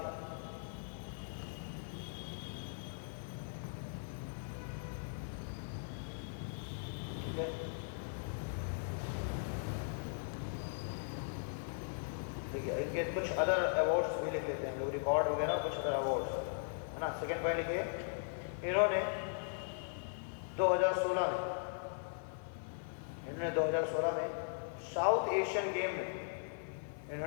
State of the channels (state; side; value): silent; right; 52 dB below the other